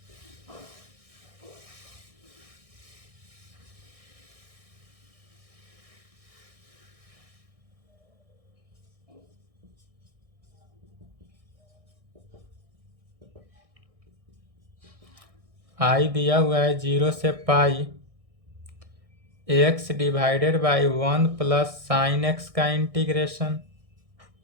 आई दिया हुआ है 0 से pi x divided by 1 plus sine x का इंटीग्रेशन।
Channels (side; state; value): left; late; 1.6 ms